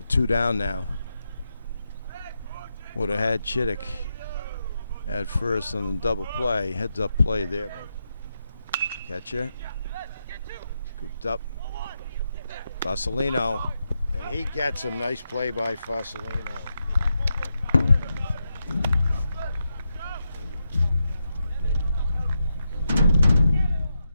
2 down now. Would have had Chittick at first on the double play. Heads up play there. Catcher. Scooped up. Fasolino. And he gets him. Nice play by Fasolino.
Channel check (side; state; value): both; inverted; correlation -0.85